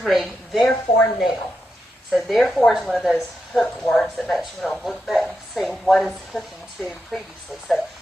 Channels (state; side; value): normal; both; correlation 0.86